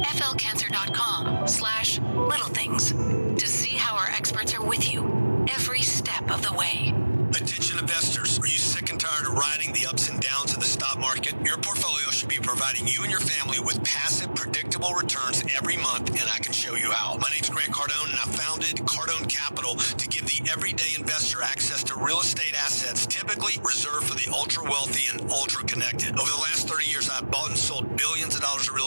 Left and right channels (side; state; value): both; inverted; correlation -1.00